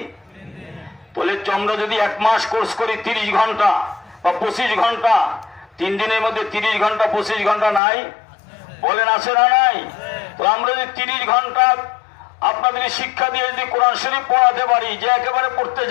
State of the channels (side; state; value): right; drops out; at 7.8 s